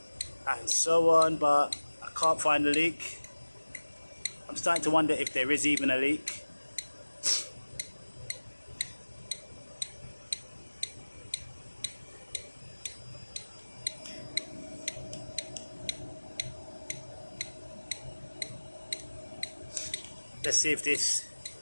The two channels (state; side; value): inverted; both; correlation -1.00